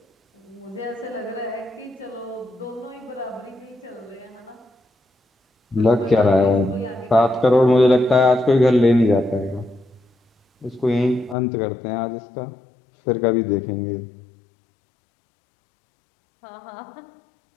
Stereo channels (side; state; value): right; drops out; at 11.4 s